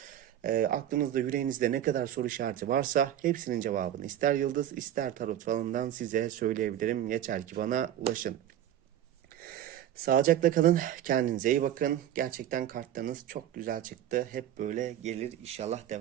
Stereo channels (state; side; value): quieter; left; 11.3 dB